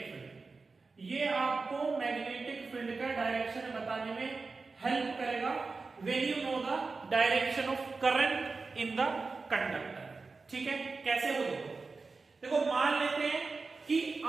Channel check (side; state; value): left; quieter; 4.1 dB